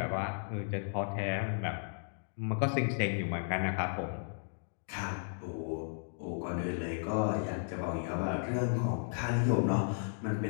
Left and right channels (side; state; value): right; silent; digital silence